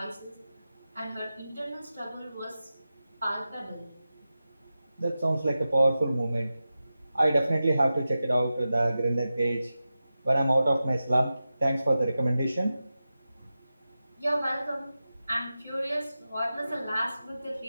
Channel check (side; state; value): both; inverted; correlation -0.93